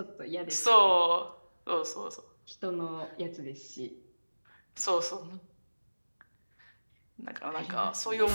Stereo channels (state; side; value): inverted; both; correlation -1.00